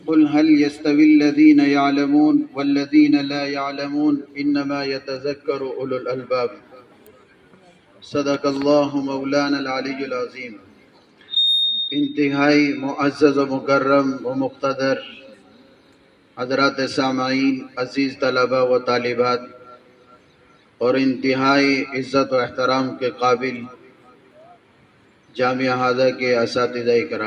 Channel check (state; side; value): identical; both; correlation 1.00